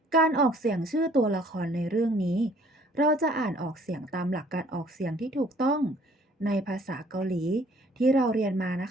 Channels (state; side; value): normal; both; correlation 0.58